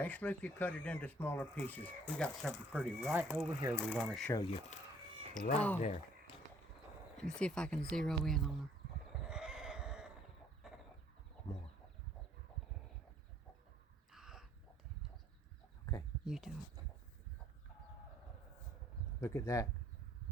if you cut it into smaller pieces. We got something pretty right over here we want to show you. Right there. Let me see if I can zero in on her. More. Okay. You do it. Look at that.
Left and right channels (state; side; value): normal; both; correlation 0.61